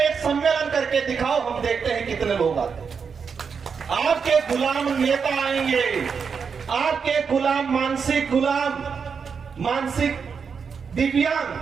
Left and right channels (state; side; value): quieter; left; 6.0 dB